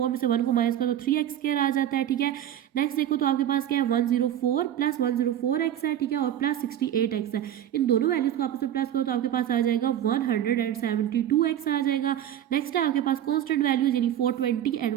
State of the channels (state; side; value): quieter; left; 11.0 dB